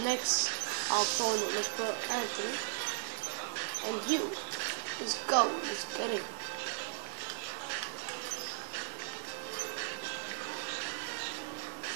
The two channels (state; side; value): silent; left; 53 dB below the other